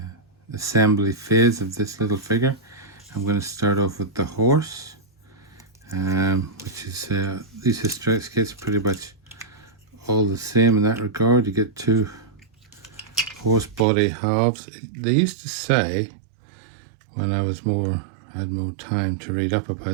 assembly phase of this little figure. I'm going to start off with the horse, which is these Historex kits are pretty much all the same in that regard. You get two horse body halves. They used to say, when I had more time to read up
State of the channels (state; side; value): drops out; left; at 13.9 s